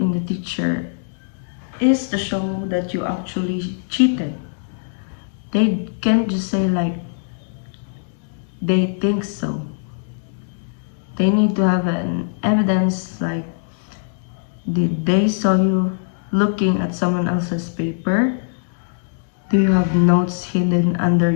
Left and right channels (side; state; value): right; silent; digital silence